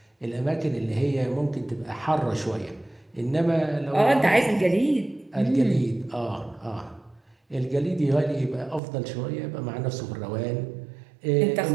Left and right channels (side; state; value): left; drops out; at 8.8 s